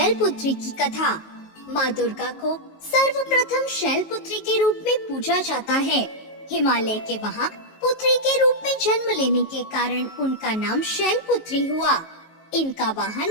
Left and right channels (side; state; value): right; late; 19 ms